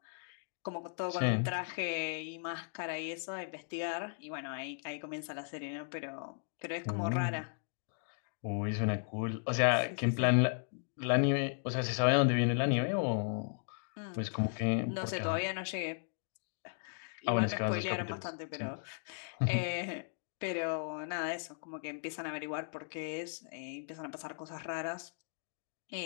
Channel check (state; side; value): silent; right; digital silence